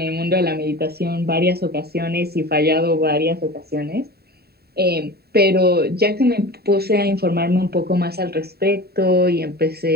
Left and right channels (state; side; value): late; left; 0.46 ms